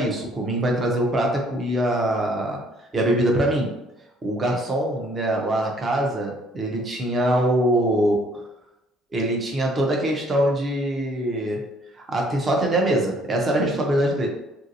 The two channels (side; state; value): both; normal; correlation 0.62